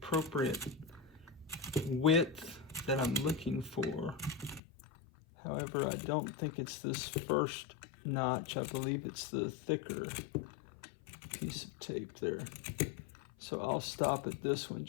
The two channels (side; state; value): right; drops out; at 4.6 s